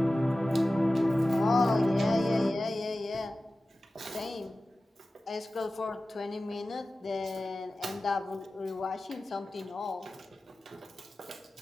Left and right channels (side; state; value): both; normal; correlation 0.95